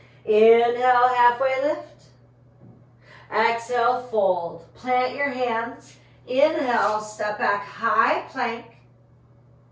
Inhale, halfway lift. Exhale, fold. Plant your hands. Inhale, step back, high plank.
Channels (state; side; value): identical; both; correlation 1.00